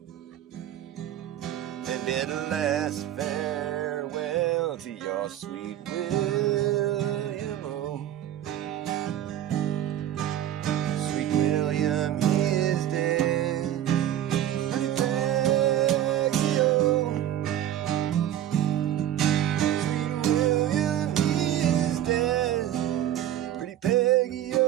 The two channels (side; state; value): left; quieter; 11.7 dB